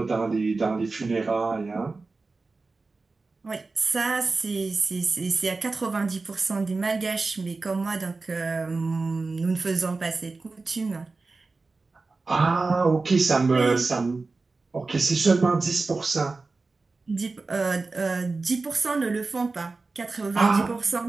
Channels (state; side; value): quieter; left; 3.8 dB